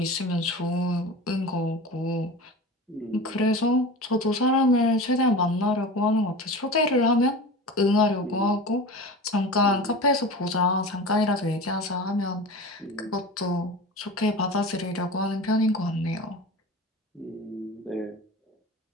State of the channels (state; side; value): normal; both; correlation 0.32